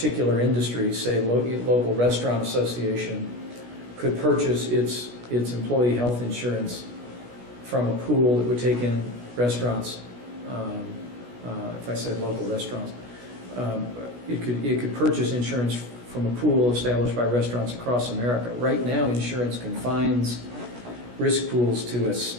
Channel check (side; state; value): left; late; 16 ms